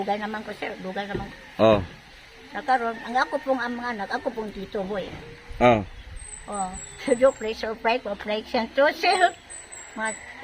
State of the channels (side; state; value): both; identical; correlation 1.00